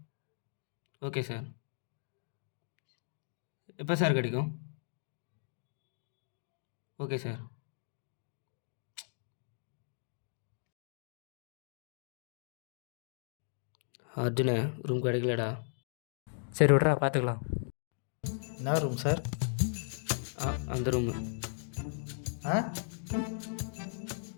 Okay sir. எப்போ சார் கிடைக்கும்? Okay sir. அர்ஜுனே, ரூம் கிடைக்கலடா. சரி விட்றா, பார்த்துக்கலாம். என்ன ரூம் சார்? அந்த ரூமு. ஆ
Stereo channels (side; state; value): right; silent; digital silence